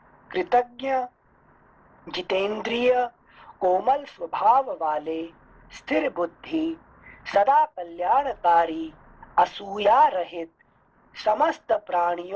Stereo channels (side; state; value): both; identical; correlation 1.00